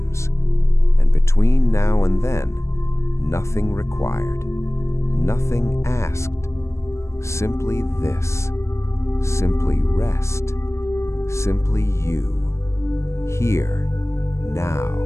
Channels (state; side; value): late; right; 0.13 ms